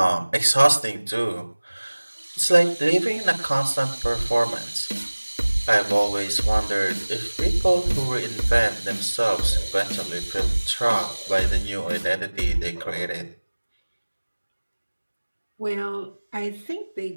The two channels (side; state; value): both; inverted; correlation -1.00